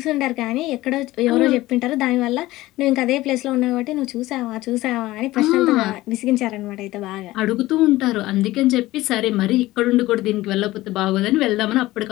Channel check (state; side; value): quieter; right; 17.5 dB